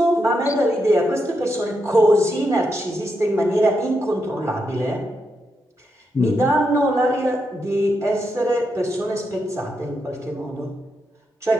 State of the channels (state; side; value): normal; both; correlation 0.83